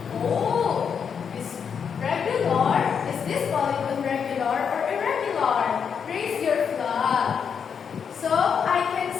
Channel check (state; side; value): quieter; right; 6.9 dB